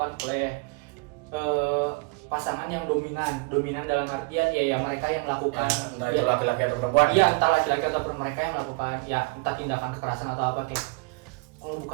oleh pasangan yang dominan dalam artian ya mereka yang melakukan Entah itu laki-laki atau perempuan. iya entah laki-laki atau mereka yang melakukan ya entah tindakan kekerasan atau apa kayak kalau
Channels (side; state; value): left; quieter; 29.3 dB